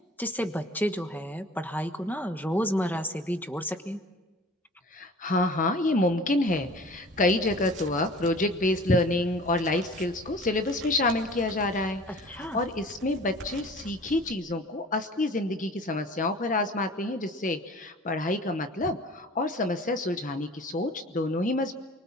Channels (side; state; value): both; normal; correlation 0.44